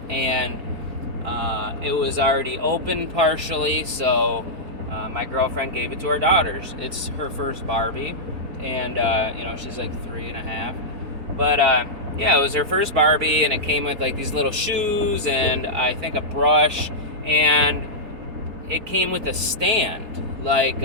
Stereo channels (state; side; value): late; left; 4.4 ms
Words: and it was already open partially, so my girlfriend gave it to our daughters. It's her first Barbie, and she's like 3.5, but it was her first Barbie, and it came with like these little shoes and I think a brush, and it came with a stand, like